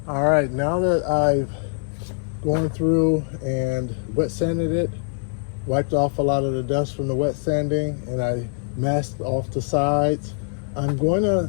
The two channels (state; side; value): silent; right; 59 dB below the other